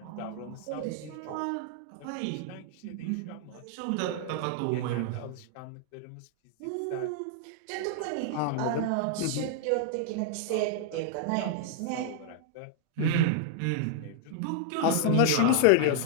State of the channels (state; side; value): different; both; correlation -0.01